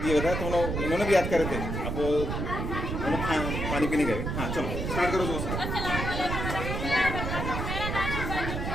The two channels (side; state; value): right; noise; rumble, 2 dB below the sound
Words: रहा तो उन्होंने भी याद करे थे। अब उन्होंने पानी पीने गए। हाँ चलो स्टार्ट करो दोस्त।